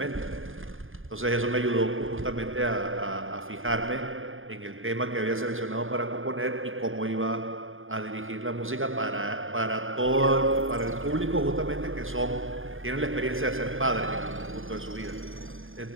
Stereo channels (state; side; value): late; left; 0.59 ms